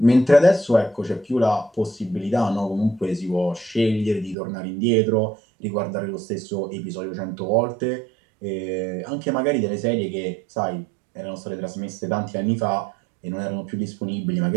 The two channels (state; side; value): drops out; left; at 4.4 s